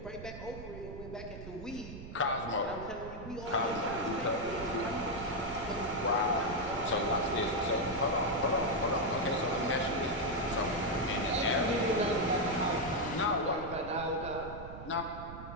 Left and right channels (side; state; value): right; noise; rumble, 12 dB below the sound